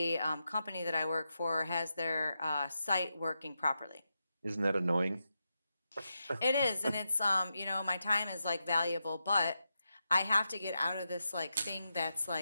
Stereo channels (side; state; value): both; inverted; correlation -0.87